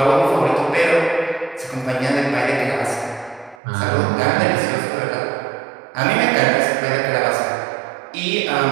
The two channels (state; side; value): drops out; left; at 3.6 s